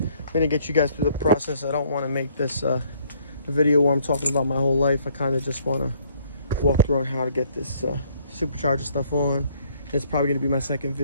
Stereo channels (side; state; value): both; inverted; correlation -0.63